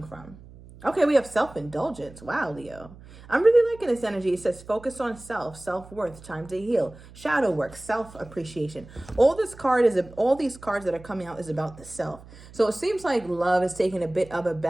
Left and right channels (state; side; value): noise; right; hum, 20 dB below the sound